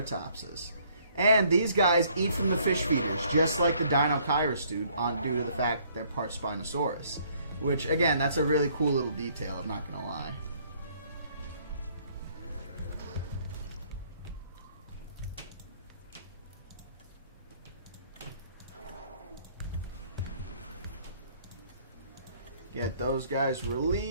And these guys eat from the fish feeders, just like the Dinochirus do, due to the fact that they're part Spinosaurus. Which, again, that's a really cool little detail, I'm not going to lie. Get those guys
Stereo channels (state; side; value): inverted; both; correlation -0.63